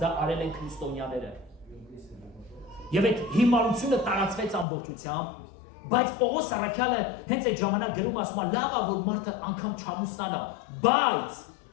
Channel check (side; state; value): right; drops out; at 4.7 s